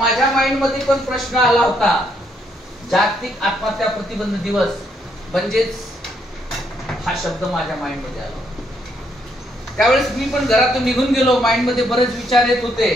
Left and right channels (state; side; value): normal; both; correlation 0.73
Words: माइंड मध्ये पण प्रश्न आला होता, जागतिक आत्महत्या प्रतिबंध दिवस म्हणजेच हा शब्द माझ्या माइंड मध्ये आला. त्यावेळेस मी पण घरातून निघून गेलो. माइंड मध्ये बरेच विचार येत होते.